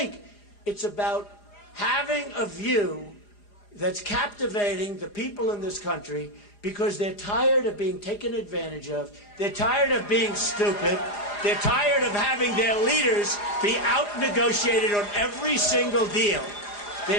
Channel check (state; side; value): late; right; 4.9 ms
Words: it's about having a view that's captivating the people in this country because they're tired of being taken advantage of, they're tired of being stupid, they're tired of having their leaders be out-negotiated on every single deal.